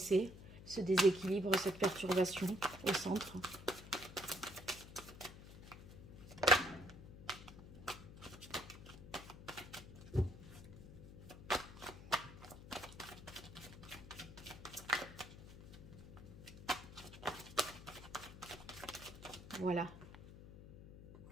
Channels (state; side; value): noise; left; hum, 14 dB below the sound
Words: ce déséquilibre, cette perturbation au centre? Voilà.